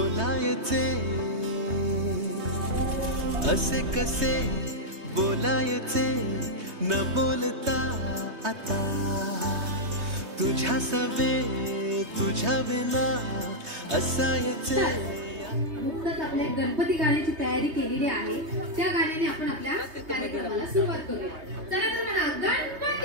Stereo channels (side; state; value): left; late; 3.2 ms